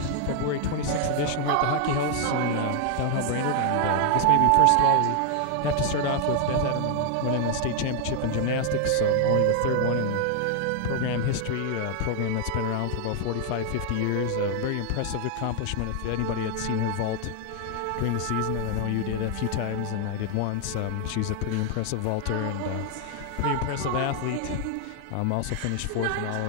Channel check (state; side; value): different; both; correlation 0.00